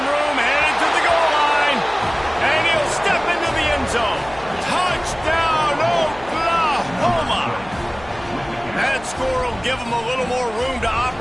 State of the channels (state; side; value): noise; left; hum, 20 dB below the sound